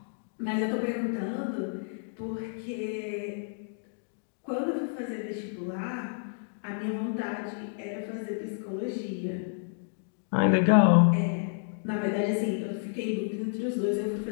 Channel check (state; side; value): silent; right; digital silence